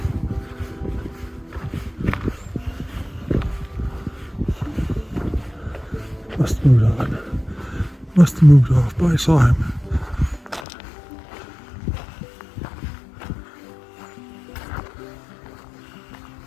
Must have moved on. Must have moved off, but I saw him.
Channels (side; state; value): right; drops out; at 10.7 s